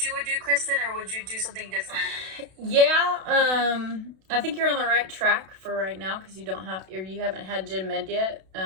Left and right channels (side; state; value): left; late; 32 ms